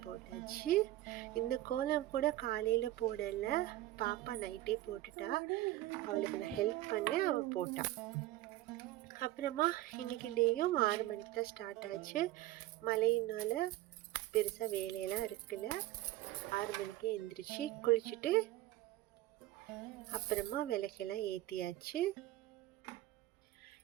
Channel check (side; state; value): left; quieter; 16.0 dB